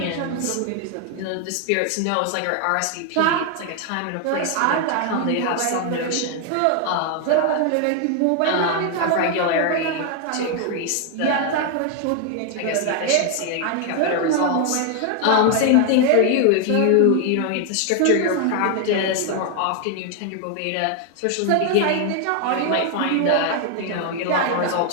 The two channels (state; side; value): different; both; correlation 0.01